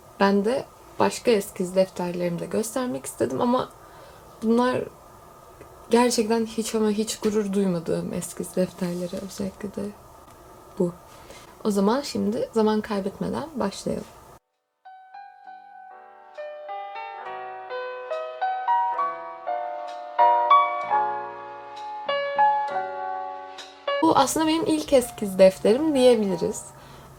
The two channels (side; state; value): both; identical; correlation 1.00